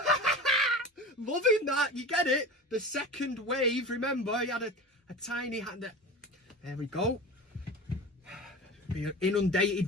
Loving that. You get it? The second wave. Remember, he had a tiny hand. There we go. Being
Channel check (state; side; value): normal; both; correlation 0.32